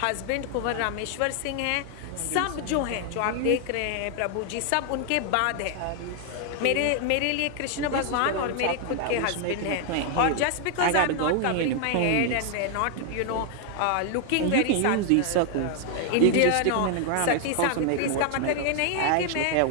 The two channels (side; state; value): both; different; correlation 0.00